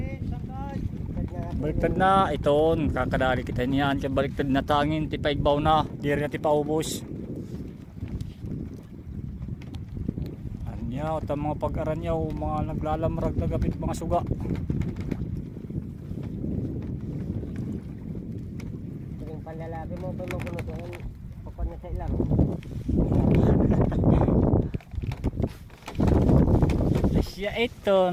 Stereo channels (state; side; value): identical; both; correlation 1.00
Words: Baliktad na iton kakadali kita niyan kaya baliktad na tangin tipaibaw na diri na tipaubos anyaw ta mga pag-aranyaw mga naglalamrag na gapit mga suga yung panlalaki mo pa magulutuhan papan na sa ilang siya